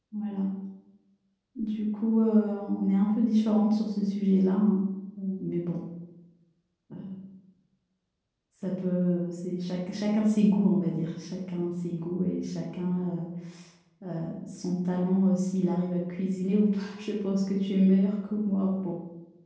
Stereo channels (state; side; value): identical; both; correlation 1.00